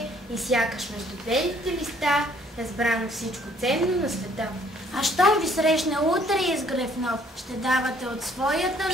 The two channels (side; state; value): both; normal; correlation 0.62